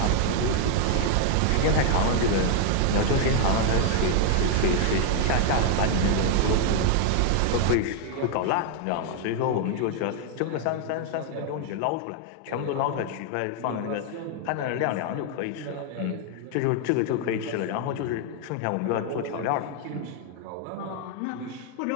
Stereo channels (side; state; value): both; different; correlation 0.00